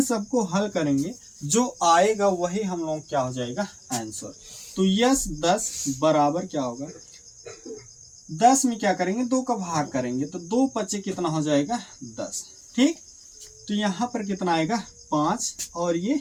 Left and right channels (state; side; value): identical; both; correlation 1.00